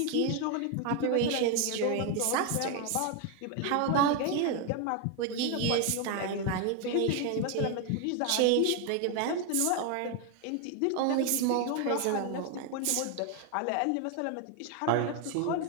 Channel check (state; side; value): different; both; correlation 0.01